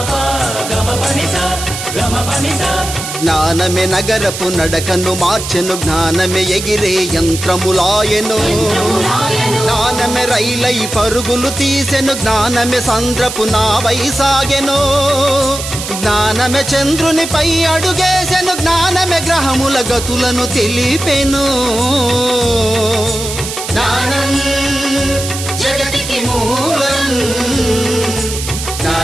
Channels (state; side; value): noise; right; hiss, 7 dB below the sound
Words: గమ పని స గమ పని స. జ్ఞానమే నగరపు నడకను మార్చెను, జ్ఞానమే ఎగిరే యంత్రములాయెను, జ్ఞానమే రైలై పరుగులు తీసెను, జ్ఞానమే సంద్రపు నావై సాగెను, జ్ఞానమే చంద్రునిపై అడుగేసెను, జ్ఞానమే గ్రహముల గతులను తెలిపెను. జ్ఞానం జగతికి మూలం,